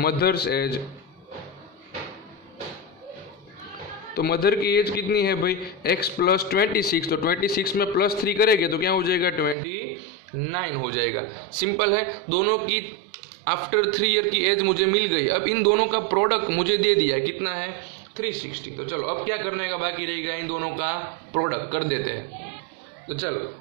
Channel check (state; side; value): drops out; left; at 9.6 s